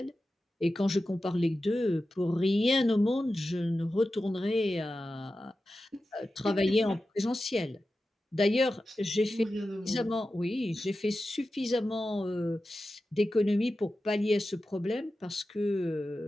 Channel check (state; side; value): normal; both; correlation 0.93